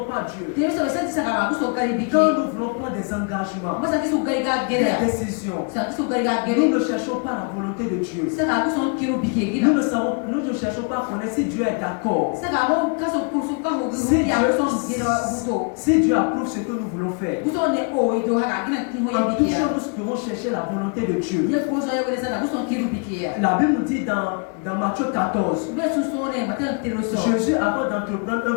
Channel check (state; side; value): quieter; right; 36.9 dB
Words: pas Dieu. Quand nous voulons prendre des engagements, des décisions, nous ne cherchons pas la volonté de Dieu. Nous ne cherchons pas à connaître si Dieu est d'accord. Si Dieu approuve ce que nous voulons faire. En toute chose, nous devons chercher la volonté de Dieu. La Bible nous dit dans Matthieu 14, Jésus, avant d'entreprendre un